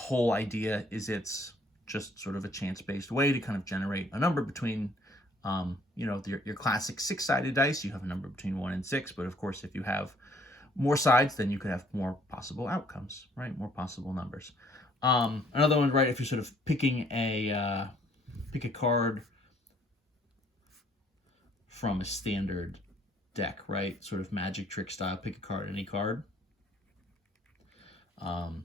idea is it's just sort of a chance-based way to kind of generate a number between, your classic 6-sided dice. You have a number between 1 and 6, but of course, if you have more sides, then you could have more possible outcomes, right? More possible numbers. Another one, right, if you're sort of picking pick a card from a standard deck, right? Sort of magic trick style, pick a card, any card.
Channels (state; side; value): normal; both; correlation 0.62